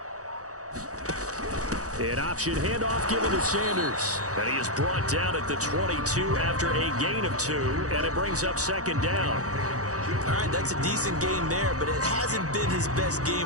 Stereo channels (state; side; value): late; left; 0.66 ms